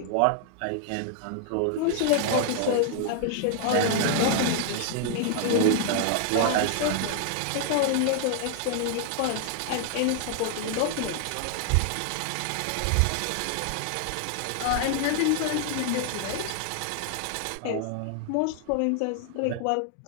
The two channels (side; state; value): both; different; correlation 0.00